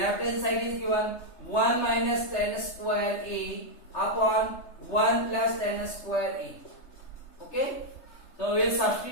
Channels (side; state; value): right; late; 3.3 ms